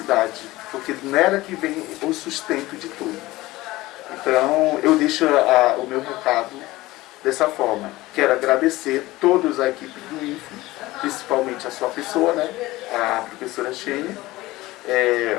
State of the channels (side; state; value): right; quieter; 18.6 dB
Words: porque nela que vem o sustento de tudo. Então eu deixo o meu recado dessa forma. Quero agradecer todos a equipe do INFRO, principalmente a sua pessoa, né, a professora Xênia,